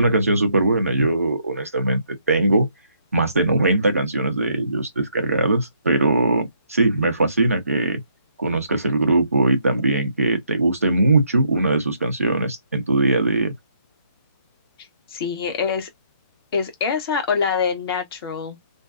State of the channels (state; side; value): inverted; both; correlation -0.70